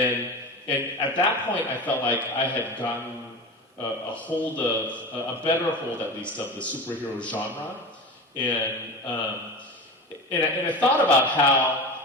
at that point I felt like I had gotten a better hold at least of the superhero genre. And I thought about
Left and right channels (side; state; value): both; normal; correlation 0.28